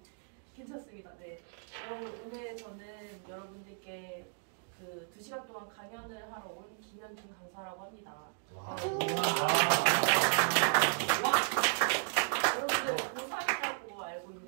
괜찮습니다. 네. 오늘 저는 여러분들께 그 2시간 동안 강연을 하러 온 김현준 강사라고 합니다. 여러분들 고3이라고 알고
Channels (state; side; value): silent; left; digital silence